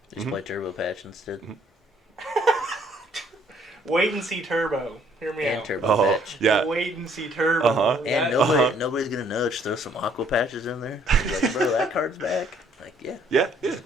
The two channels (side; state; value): both; normal; correlation 0.64